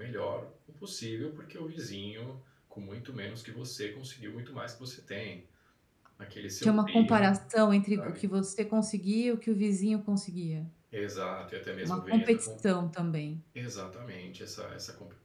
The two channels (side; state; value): both; identical; correlation 1.00